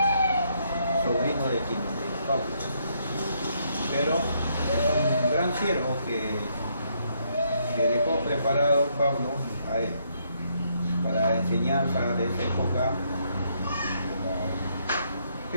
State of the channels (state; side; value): inverted; both; correlation -0.73